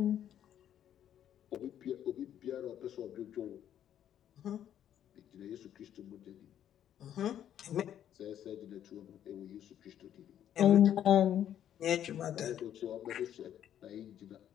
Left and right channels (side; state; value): right; quieter; 10.4 dB